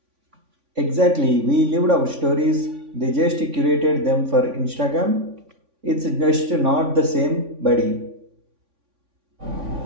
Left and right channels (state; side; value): late; left; 3.5 ms